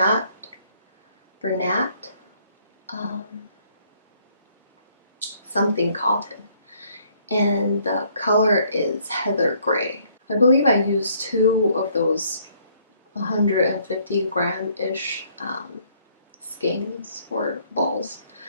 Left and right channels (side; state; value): both; inverted; correlation -0.65